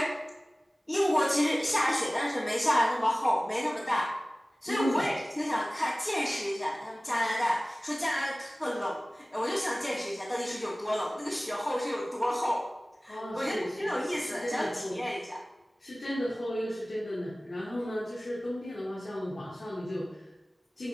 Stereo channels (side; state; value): both; normal; correlation 0.98